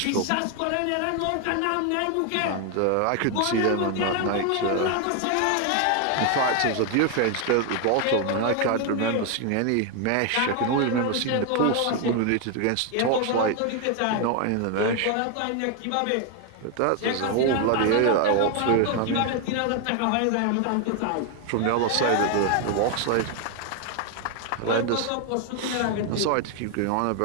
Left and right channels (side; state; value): both; different; correlation 0.01